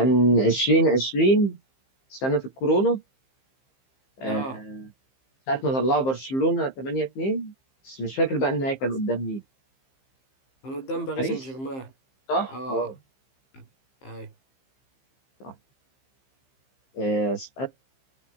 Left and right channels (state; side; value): late; right; 15 ms